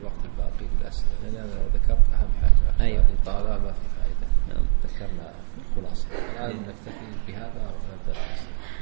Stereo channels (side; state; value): left; quieter; 37.9 dB